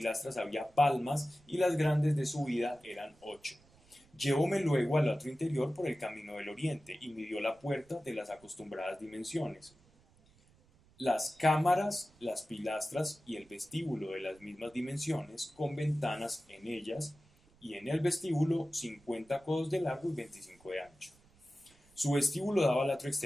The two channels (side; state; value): right; noise; rumble, 29 dB below the sound